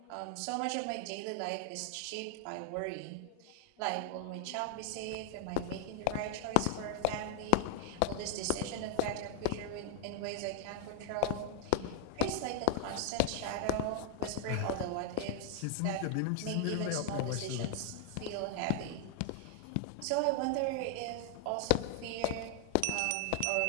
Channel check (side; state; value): both; different; correlation 0.00